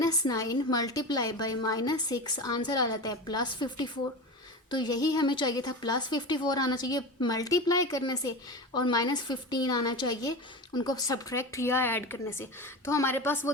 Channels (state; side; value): normal; both; correlation 0.26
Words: मल्टीप्लाई बाय -6 आंसर आ जाता है +54। तो यही हमें चाहिए था, +54 आना चाहिए मल्टीप्लाई करने से और -15 आना चाहिए उनको सब्ट्रैक्ट या ऐड करने से। तो हमारे पास वो